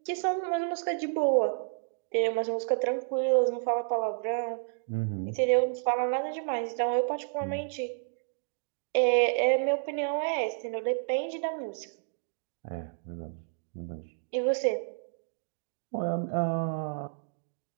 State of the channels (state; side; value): silent; left; digital silence